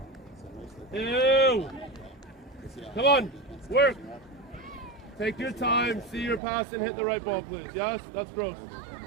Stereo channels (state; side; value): drops out; left; at 6.4 s